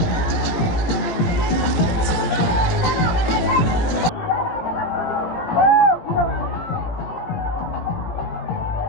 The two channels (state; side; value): late; right; 17 ms